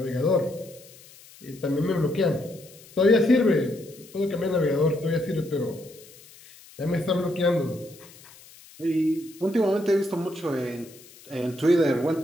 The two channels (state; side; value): noise; left; hiss, 22 dB below the sound